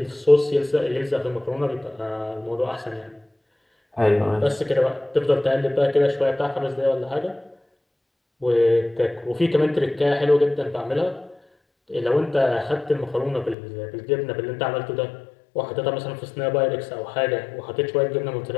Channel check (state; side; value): drops out; right; at 13.6 s